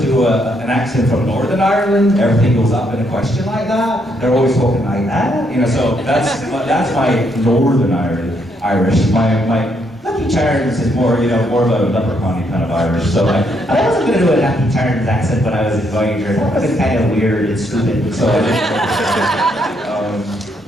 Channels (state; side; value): normal; both; correlation 0.74